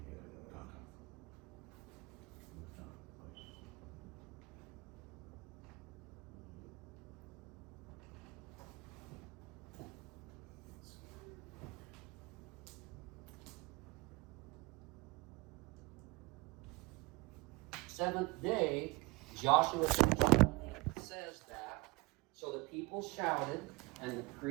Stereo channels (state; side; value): quieter; left; 23.7 dB